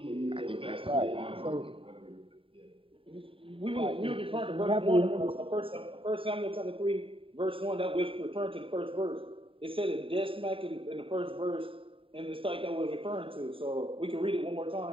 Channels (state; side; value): late; left; 0.26 ms